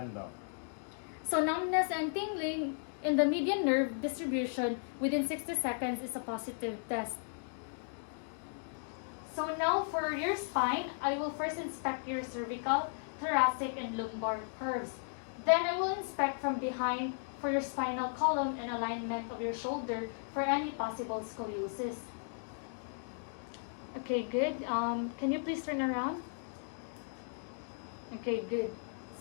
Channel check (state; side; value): silent; right; digital silence